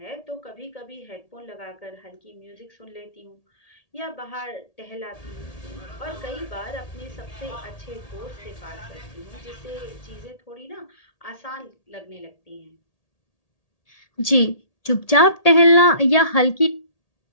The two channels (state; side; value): late; right; 1.8 ms